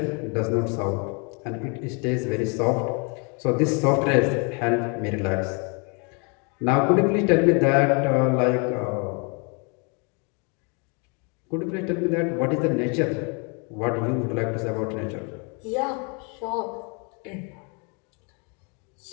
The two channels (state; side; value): quieter; right; 34.4 dB